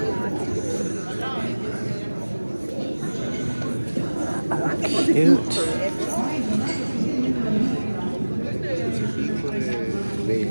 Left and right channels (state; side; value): inverted; both; correlation -1.00